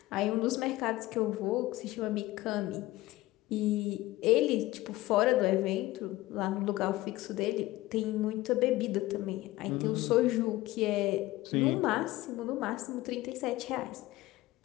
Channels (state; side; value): quieter; right; 17.6 dB